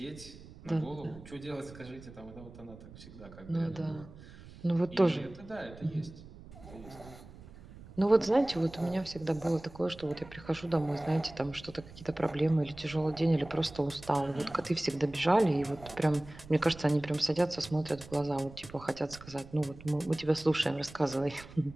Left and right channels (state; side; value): noise; right; rumble, 18 dB below the sound